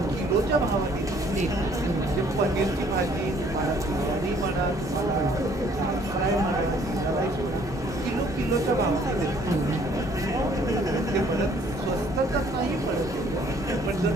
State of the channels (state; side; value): normal; both; correlation 0.60